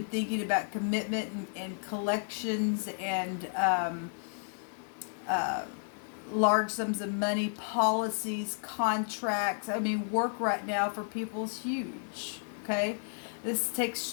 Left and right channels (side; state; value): right; silent; 56 dB below the other